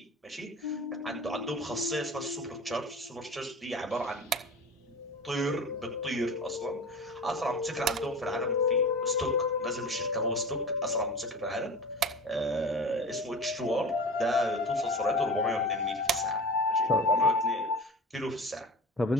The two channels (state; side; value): normal; both; correlation 0.33